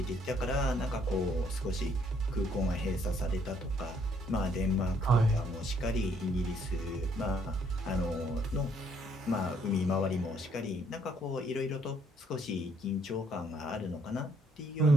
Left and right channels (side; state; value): both; normal; correlation 0.67